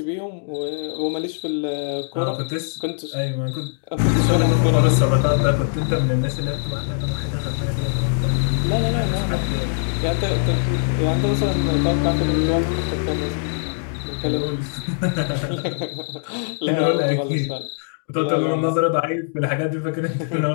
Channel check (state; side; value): silent; right; digital silence